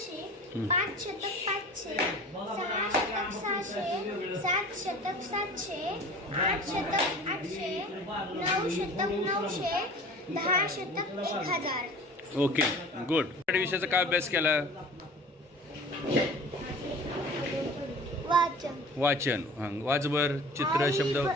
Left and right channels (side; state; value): both; normal; correlation 0.42